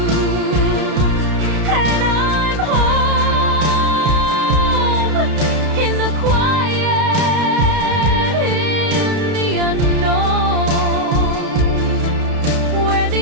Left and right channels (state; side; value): late; left; 32 ms